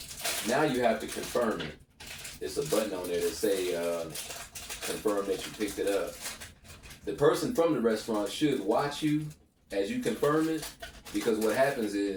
now you have to confirm it. There's a button on there that say confirm that you picked it up. The person from the restaurant should watch you as you confirm it, because what happens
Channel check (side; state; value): both; identical; correlation 1.00